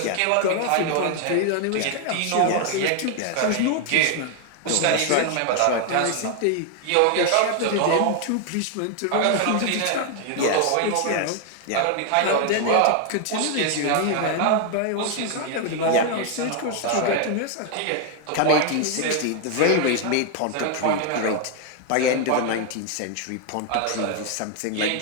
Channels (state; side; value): different; both; correlation 0.00